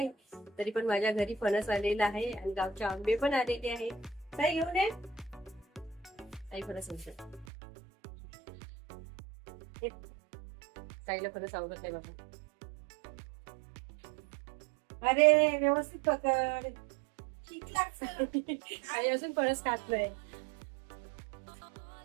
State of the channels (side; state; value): left; drops out; at 7.5 s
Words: तरी पण माझ्या घरी फणस आलेला आहे आणि गावचे आंबे पण आलेले आहे. ताई घेऊन ये ताई फणस. ताईला फणस आवडत नाही बाबा. अरे व्यवस्थित पकड. ठीक लागतं. आणि अजून फणस खातलंय.